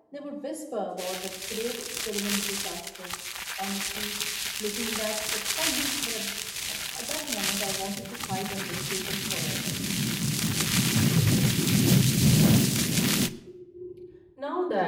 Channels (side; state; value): both; identical; correlation 1.00